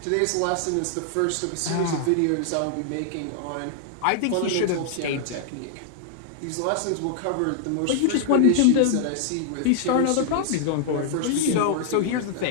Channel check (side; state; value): both; different; correlation -0.01